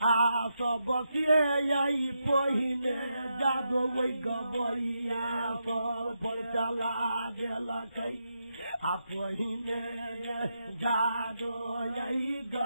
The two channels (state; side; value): inverted; both; correlation -0.84